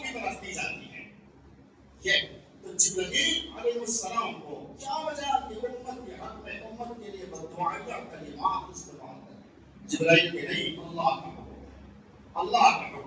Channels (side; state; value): both; identical; correlation 1.00